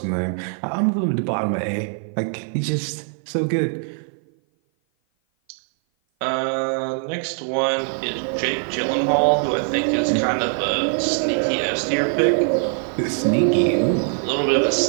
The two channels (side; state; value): left; silent; 56 dB below the other